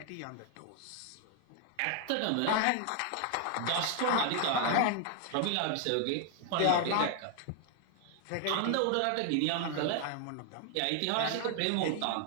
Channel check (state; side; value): different; both; correlation 0.00